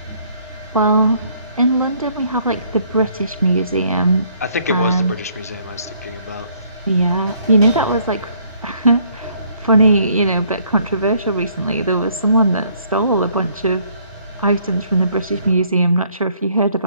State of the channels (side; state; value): both; inverted; correlation -0.64